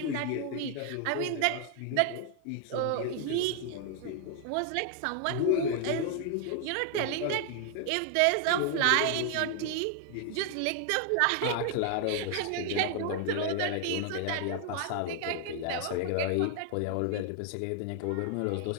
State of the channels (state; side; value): different; both; correlation 0.00